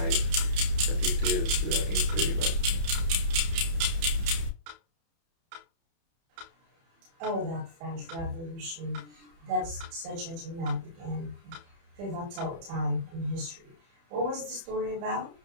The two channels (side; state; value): left; late; 30 ms